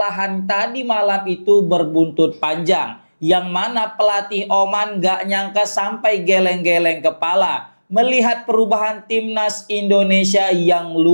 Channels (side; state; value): both; inverted; correlation -1.00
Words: tadi malam itu berbuntut panjang, yang mana pelatih Oman gak nyangka sampai geleng-geleng kepala melihat perubahan timnas Indonesia yang